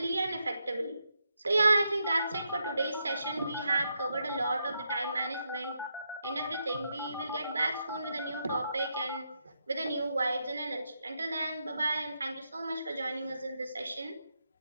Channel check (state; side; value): inverted; both; correlation -0.81